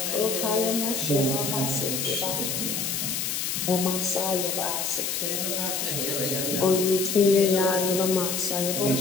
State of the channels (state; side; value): noise; left; hiss, 1 dB below the sound